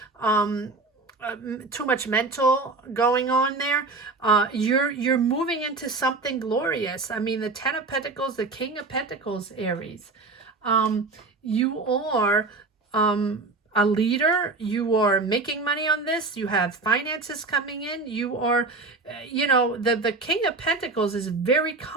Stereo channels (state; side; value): quieter; left; 3.7 dB